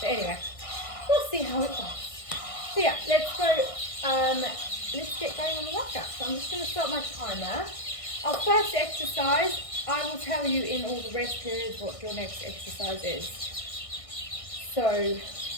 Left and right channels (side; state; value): right; late; 1.5 ms